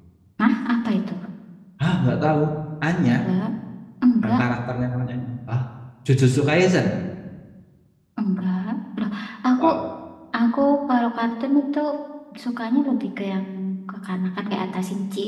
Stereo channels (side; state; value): both; identical; correlation 1.00